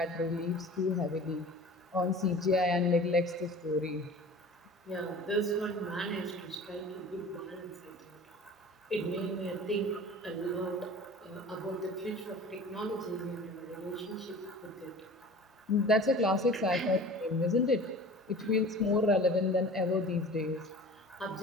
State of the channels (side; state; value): both; normal; correlation 0.41